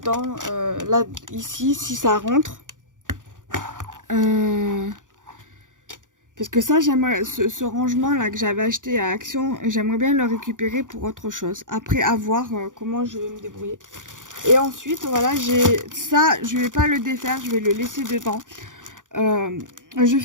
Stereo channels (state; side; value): late; left; 0.88 ms